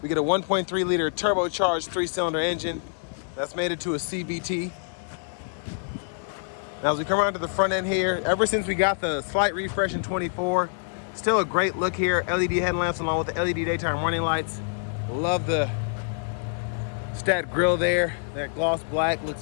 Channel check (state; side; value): silent; right; digital silence